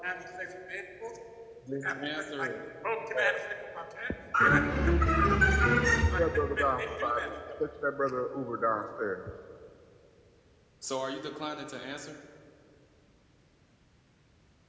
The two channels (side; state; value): both; identical; correlation 1.00